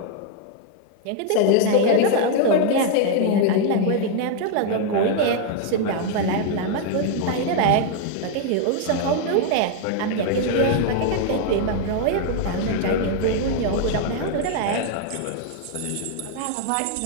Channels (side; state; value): both; different; correlation 0.00